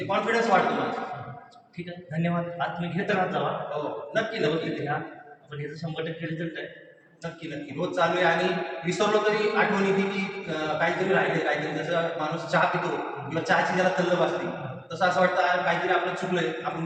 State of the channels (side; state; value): both; identical; correlation 1.00